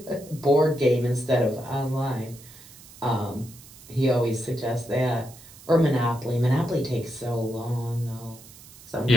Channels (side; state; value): right; noise; hiss, 20 dB below the sound